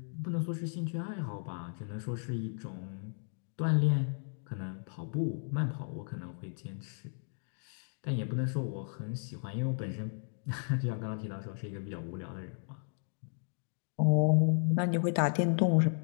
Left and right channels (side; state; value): right; silent; 55 dB below the other